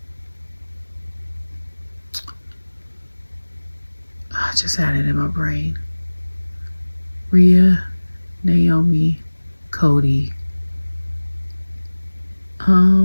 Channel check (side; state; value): both; inverted; correlation -1.00